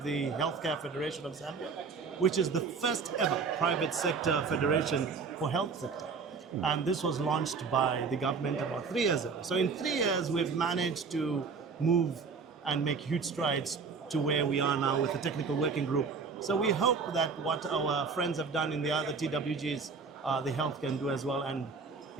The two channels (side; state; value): left; quieter; 5.1 dB